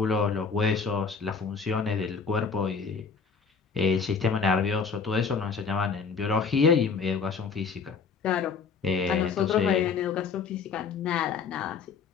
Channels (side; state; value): right; quieter; 5.6 dB